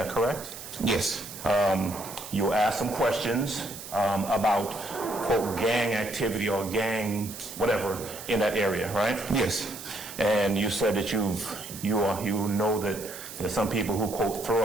correct? Yes. You asked some questions about, quote, gang activity or gang whatever in that area, right? Yes. And you said that you know that there's some people who, quote,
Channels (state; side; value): noise; right; hiss, 12 dB below the sound